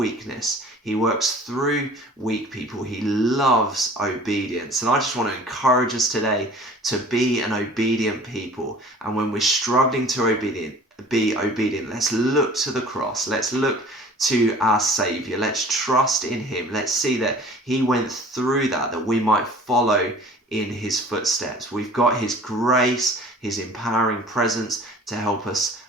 He works through weak people. He loves obedience. And I just want to encourage us today to be an obedient people. And when we're struggling to be obedient, let's look to the cross. Let's look to our Saviour. Let's trust in Him. Let's see that He went through that we might follow in His footsteps. We've got His grace, His empowering presence to help us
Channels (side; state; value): both; normal; correlation 0.47